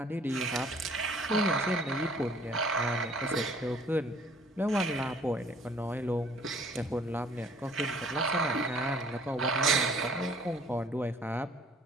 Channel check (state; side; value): normal; both; correlation 0.56